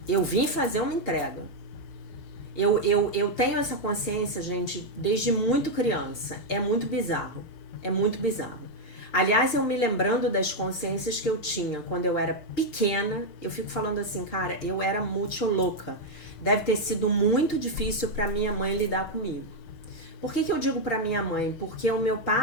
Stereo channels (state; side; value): late; right; 6.6 ms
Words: Eu vim fazer uma entrega. Eu tenho essa consciência, gente, desde muito criança. É muito bizarro. É muito bizarro. Aliás, eu me lembrando das consciências que eu tinha quando eu era pequena, eu fico falando assim, cara, eu era muito louca. Deve ter sido muito difícil para minha mãe lidar comigo. Por que eu digo para minha mãe? Porque o meu